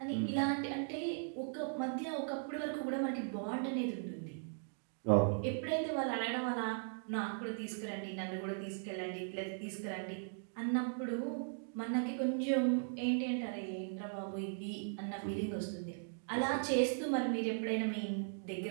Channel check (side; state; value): left; silent; digital silence